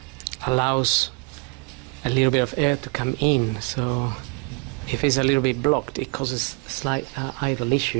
allows a little bit of air to come in, so if it's a little bit blocked it causes a slight idle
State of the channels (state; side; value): quieter; left; 29.1 dB